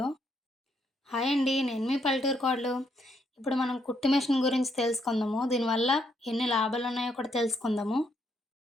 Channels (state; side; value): normal; both; correlation 0.74